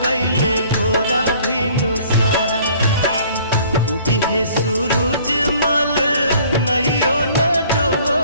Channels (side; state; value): both; inverted; correlation -0.55